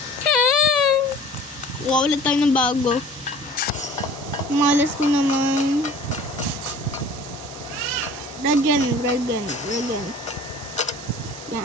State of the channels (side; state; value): both; normal; correlation 0.45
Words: Wow, ulit tayo ng bago. Malas ko naman. Dragon.